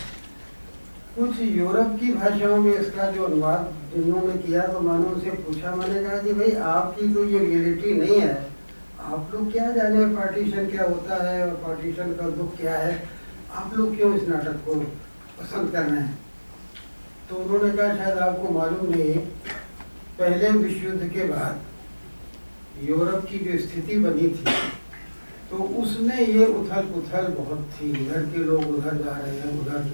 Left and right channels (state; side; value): inverted; both; correlation -1.00